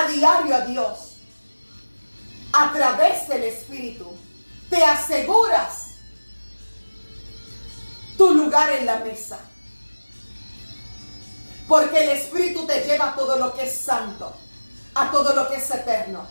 diario a Dios, a través del Espíritu, te aseguras tu lugar en la mesa. Porque el Espíritu te lleva a todo lo que es santo, a todo lo que es eterno,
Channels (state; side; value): inverted; both; correlation -1.00